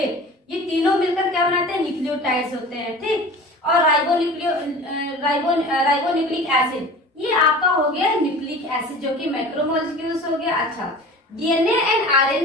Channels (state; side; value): normal; both; correlation 0.39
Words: ये तीनों मिलकर क्या बनाते हैं, न्यूक्लियोटाइड्स होते हैं, ठीक। और राइबोन्यूक्लिक एसिड, ये आपका हो गया न्यूक्लिक एसिड जो कि मैक्रोमोलिक्यूल्स हो गया। अच्छा, डीएनए एंड